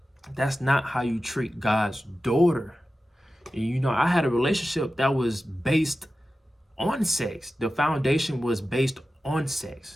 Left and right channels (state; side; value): normal; both; correlation 0.94